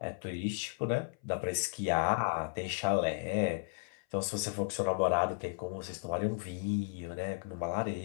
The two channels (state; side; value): silent; right; 55 dB below the other